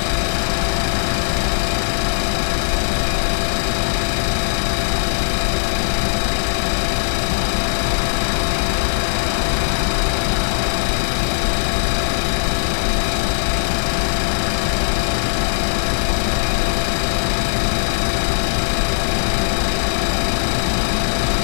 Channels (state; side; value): silent; right; digital silence